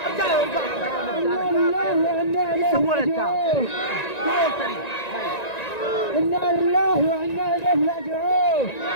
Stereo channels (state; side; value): late; right; 1.9 ms